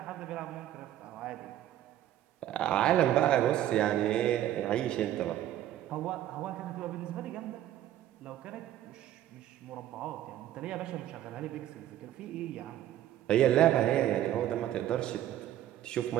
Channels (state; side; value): quieter; left; 12.4 dB